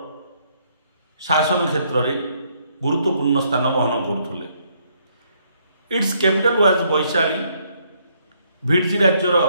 शासन क्षेत्र में गुरुत्वपूर्ण स्थान बहन करते। It's capital was Vaishali. Vajji राज्यर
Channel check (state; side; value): inverted; both; correlation -0.70